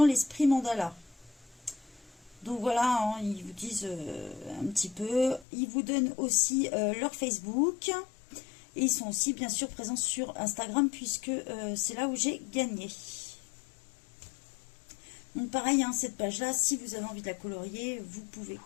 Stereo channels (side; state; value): right; drops out; at 5.5 s